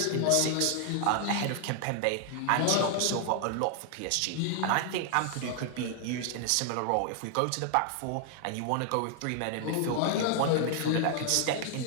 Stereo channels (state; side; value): different; both; correlation 0.00